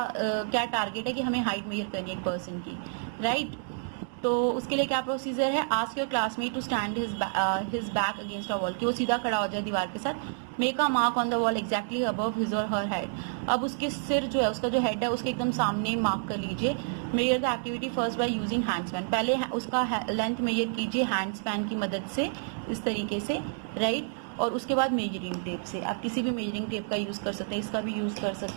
क्या टारगेट है कि हमें हाइट मेजर करनी है एक पर्सन की, राइट। तो उसके लिए क्या प्रोसीजर है, ask your classmate to stand his back against a wall, कि वो सीधा खड़ा हो जाए दीवार के साथ। Make a mark on the wall exactly above his और हर हेड। अब उसके सिर जो है, उसका जो हेड है उसके एकदम सामने मार्क कर लीजिए। Measure the activity first by using hand span. पहले उसका लेंथ मेजर कीजिए हैंड स्पैन की मदद से, इस तरीके से, राइट। और उसके बाद मेजरिंग टेप से, आप किसी भी मेजरिंग टेप का यूज कर सकते हैं, इसका भी यूज कर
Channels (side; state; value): left; silent; digital silence